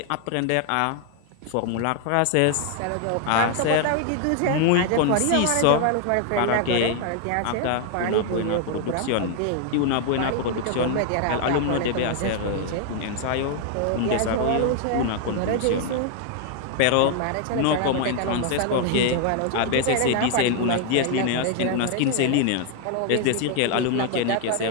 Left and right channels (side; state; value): both; different; correlation 0.00